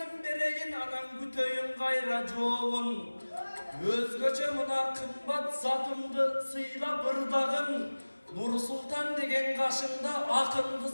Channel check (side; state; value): both; inverted; correlation -1.00